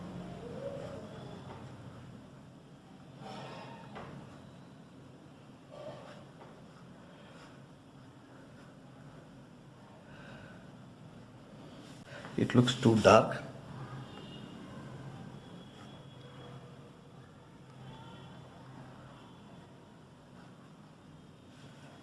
It looks too dark.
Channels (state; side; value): identical; both; correlation 1.00